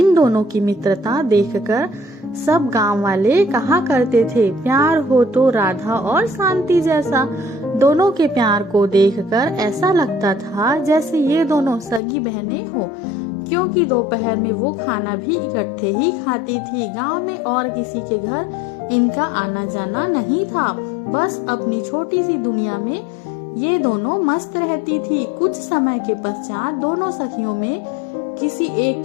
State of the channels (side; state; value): right; drops out; at 12.0 s